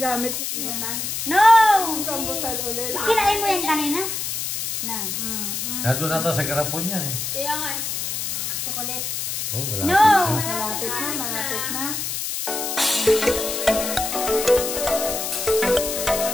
na. Rambutan? No! Rambutan ulit. Kinain mo yan kanina? No. Nandun na ito sa garapon yan eh. Kaya nga eh. Chocolate. Oh, malapit No! na. Malapit na, malapit na.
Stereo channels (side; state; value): left; noise; hiss, 3 dB below the sound